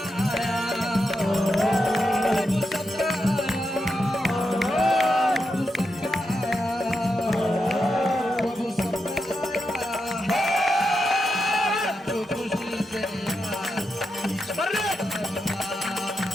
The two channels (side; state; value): both; normal; correlation 0.86